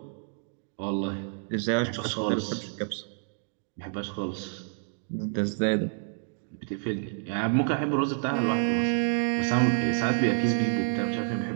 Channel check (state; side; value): silent; left; 59 dB below the other